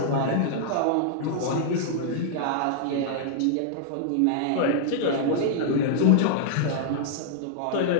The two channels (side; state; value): both; different; correlation -0.01